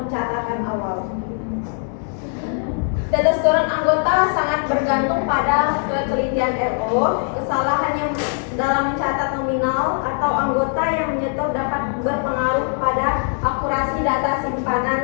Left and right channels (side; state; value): right; silent; 55 dB below the other